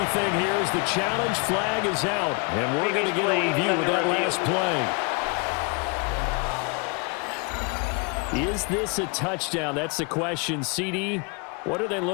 here as the challenge flag is out. And we're going to get a review of that last play. Is this a touchdown? That's the question. CD, what are they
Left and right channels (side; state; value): right; quieter; 32.5 dB